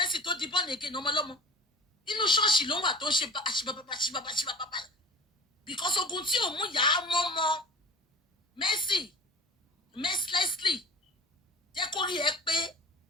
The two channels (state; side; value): normal; both; correlation 0.39